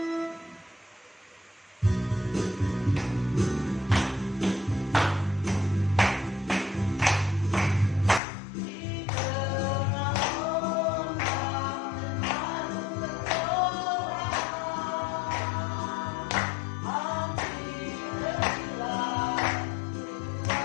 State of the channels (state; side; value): drops out; right; at 8.2 s